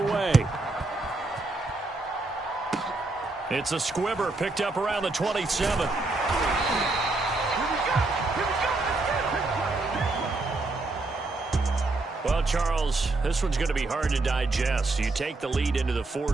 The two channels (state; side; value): quieter; left; 3.2 dB